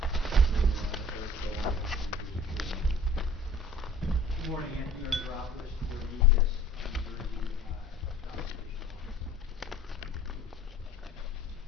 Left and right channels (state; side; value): normal; both; correlation 0.48